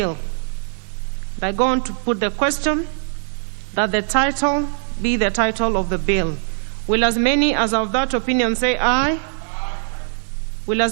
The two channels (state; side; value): silent; left; digital silence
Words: I go on to put the question that the title be the title of the bill. Will as many as of that opinion say aye? Will